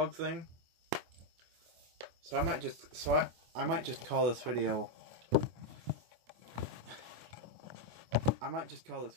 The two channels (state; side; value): late; left; 24 ms